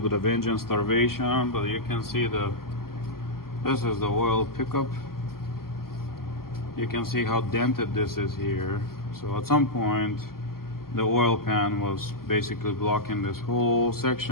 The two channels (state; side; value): late; right; 0.92 ms